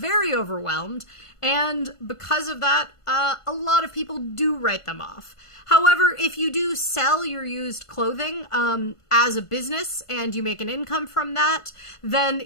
overwhelmed, and because of that, a lot of people do write them off. However, if you do sell your used clothing as a business and you make an income from that, then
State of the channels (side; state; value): right; late; 1.5 ms